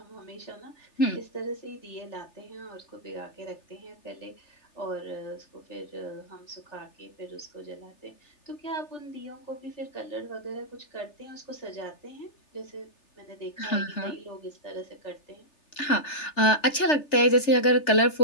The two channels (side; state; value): right; late; 3.3 ms